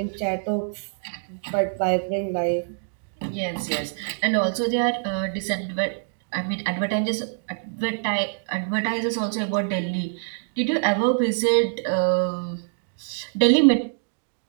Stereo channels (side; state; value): left; silent; digital silence